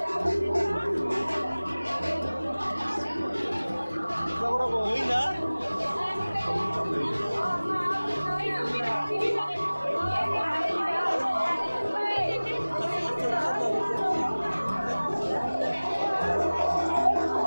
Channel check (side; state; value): both; inverted; correlation -0.99